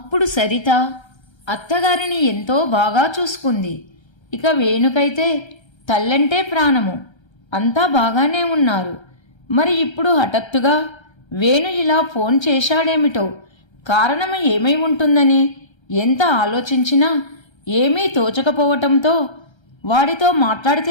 సరిత అత్తగారిని ఎంతో బాగా చూసుకుంది. ఇక వేణుకైతే తల్లంటే ప్రాణము. అంతా బాగానే ఉన్నారు. మరి ఇప్పుడు హఠాత్తుగా వేణు ఇలా ఫోన్ చేశాడేమిటో, కారణం ఏమై ఉంటుందని ఎంత ఆలోచించినా ఏమీ తోచకపోవటంతో వాడితో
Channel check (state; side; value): late; right; 1.3 ms